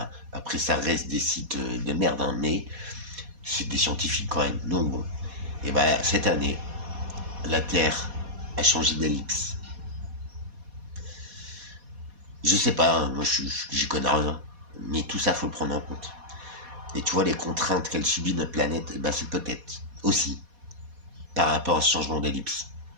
après ça reste des sites de merde, hein, mais c'est des scientifiques quand même. Donc bon, et ben cette année, la Terre a changé d'ellipse. Je sais pas, hein, moi j'y connais rien, mais tout ça faut le prendre en compte. Et tu vois les contraintes qu'elle subit notre planète, et ben c'est peut-être aussi par rapport à ce changement d'ellipse.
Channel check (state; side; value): late; left; 4.2 ms